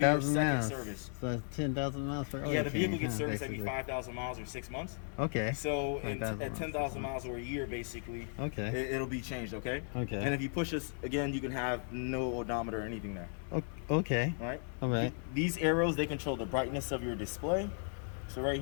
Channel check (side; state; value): right; silent; 54 dB below the other